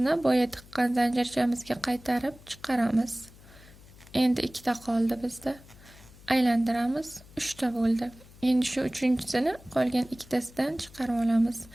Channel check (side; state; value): left; noise; hum, 22 dB below the sound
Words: boya tiqqan zanjirchamizga qaytarib chiqaramiz. Endi ikkita qoldi bizda. Aylantiramiz, 3 ta bo'ldi. Endi shu uchinchisini qolgan ikkitasidan chiqarib olamiz